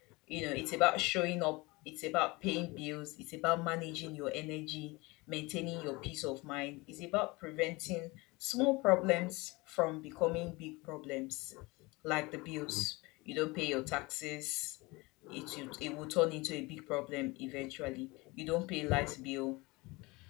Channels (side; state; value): right; quieter; 23.9 dB